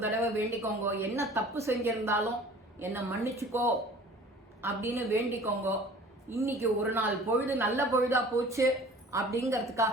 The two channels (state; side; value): normal; both; correlation 0.47